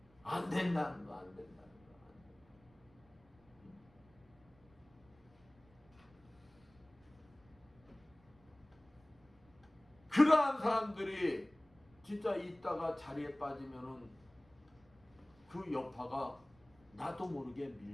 안 된다는 거 안 된다는 거. 그러한 사람들이 진짜 있다가 자리에 빠지면은 그 여파가 나도 모르게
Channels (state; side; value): noise; right; rumble, 28 dB below the sound